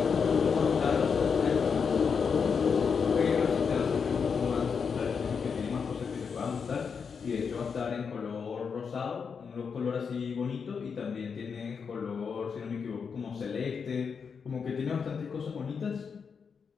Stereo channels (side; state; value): right; quieter; 6.0 dB